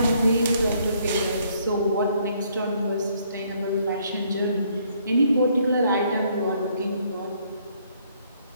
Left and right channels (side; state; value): both; inverted; correlation -0.67